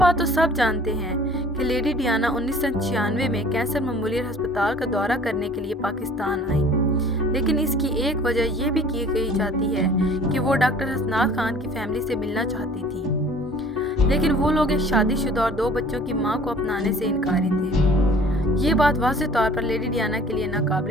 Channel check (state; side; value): normal; both; correlation 0.50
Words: تو سب جانتے ہیں کہ لیڈی ڈیانا 1996 میں کینسر میموریل ہسپتال کا دورہ کرنے کے لیے پاکستان آئی، لیکن اس کی ایک وجہ یہ بھی کہی جاتی ہے کہ وہ ڈاکٹر حسنات خان کی فیملی سے ملنا چاہتی تھی، لیکن وہ لوگ ایک شادی شدہ اور 2 بچوں کی ماں کو اپنانے سے انکاری تھے۔ یہ بات واضح طور پر لیڈی ڈیانا کے لیے